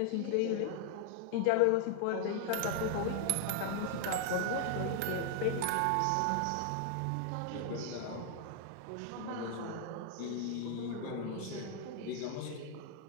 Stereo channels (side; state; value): both; different; correlation 0.00